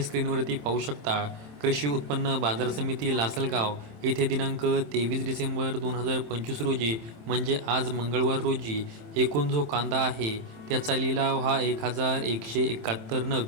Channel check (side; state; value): left; late; 27 ms